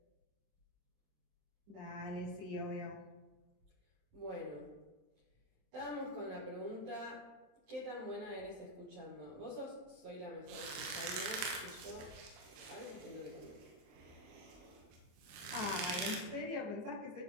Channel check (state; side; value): late; left; 28 ms